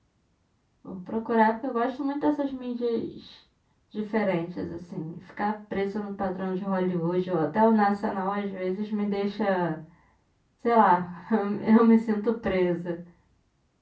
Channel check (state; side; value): identical; both; correlation 1.00